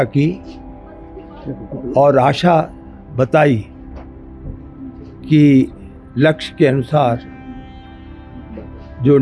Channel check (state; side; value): identical; both; correlation 1.00